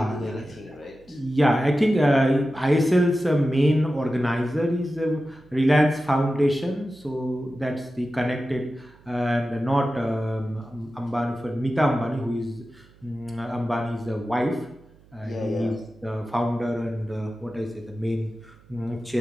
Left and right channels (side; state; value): right; noise; hum, 27 dB below the sound